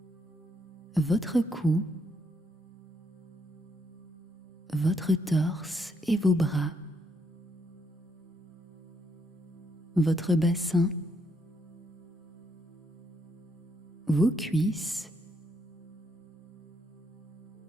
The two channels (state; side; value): normal; both; correlation 0.76